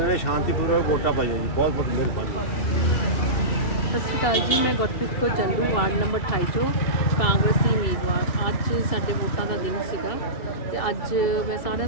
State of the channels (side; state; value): right; late; 2.7 ms